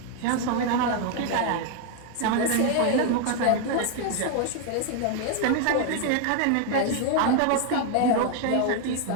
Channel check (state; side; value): different; both; correlation 0.00